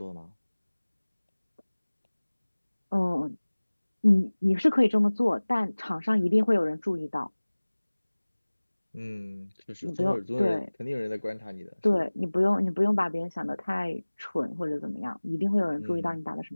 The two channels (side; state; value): both; inverted; correlation -1.00